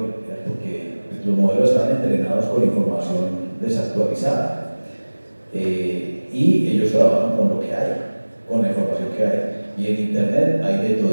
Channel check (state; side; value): inverted; both; correlation -1.00